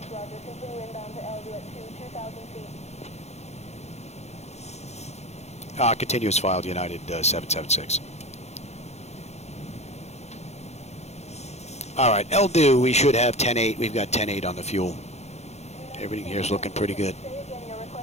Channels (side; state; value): right; late; 0.32 ms